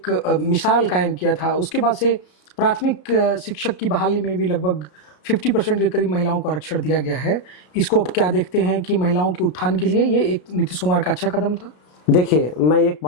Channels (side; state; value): right; late; 33 ms